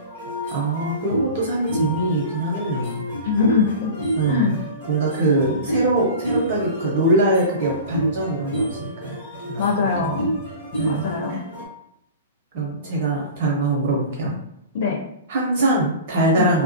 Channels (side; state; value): both; inverted; correlation -0.35